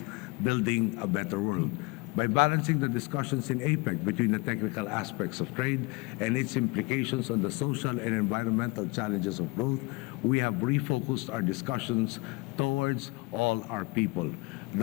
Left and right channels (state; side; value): quieter; right; 26.0 dB